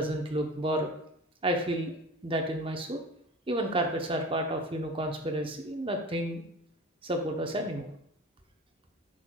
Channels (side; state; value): both; normal; correlation 0.35